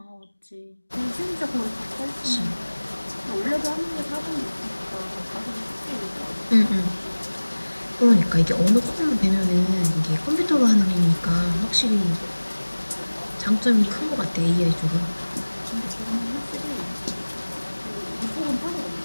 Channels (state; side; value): inverted; both; correlation -1.00